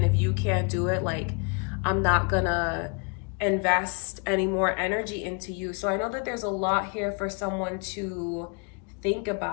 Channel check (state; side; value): quieter; right; 35.2 dB